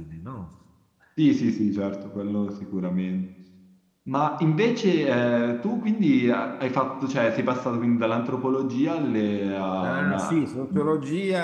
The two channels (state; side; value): identical; both; correlation 1.00